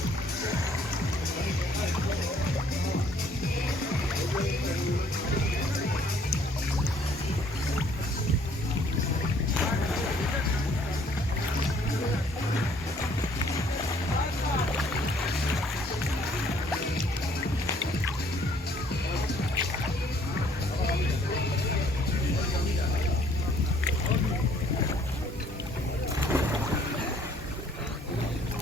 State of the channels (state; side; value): normal; both; correlation 0.61